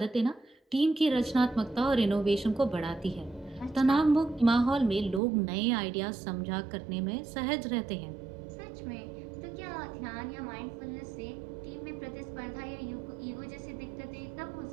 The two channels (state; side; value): drops out; left; at 5.2 s